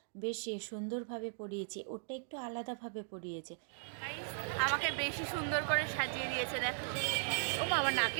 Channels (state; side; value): silent; left; digital silence